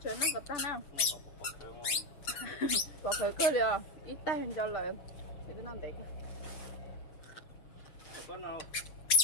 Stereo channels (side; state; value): right; late; 6.6 ms